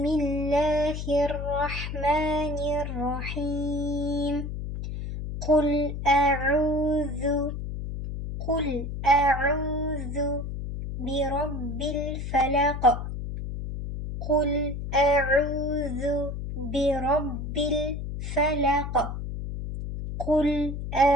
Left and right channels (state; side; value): noise; left; hum, 5 dB below the sound